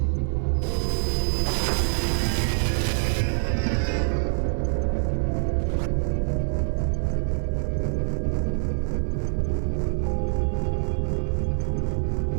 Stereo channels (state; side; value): silent; left; digital silence